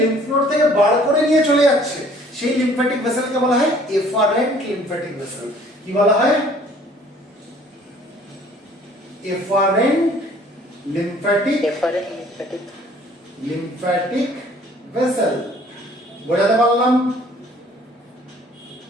নোড থেকে বার করে নিয়ে চলে যাচ্ছে, সেই লিম্ফ্যাটিক ভেসেলকে বলা হয় এফারেন্ট লিম্ফ্যাটিক ভেসেল। কি বলা হয়? Efferent lymphatic vessel. বোঝাতে পারলাম?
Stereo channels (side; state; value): both; normal; correlation 0.55